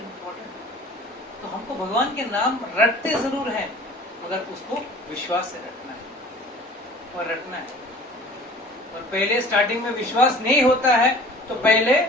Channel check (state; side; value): normal; both; correlation 0.46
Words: important. तो हमको भगवान के नाम रटते जरूर हैं, मगर उसको विश्वास से रटना है और रटना है। और पहले स्टार्टिंग में विश्वास नहीं होता है, तो पहले